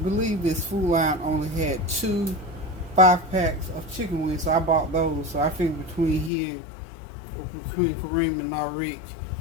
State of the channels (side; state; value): right; drops out; at 6.3 s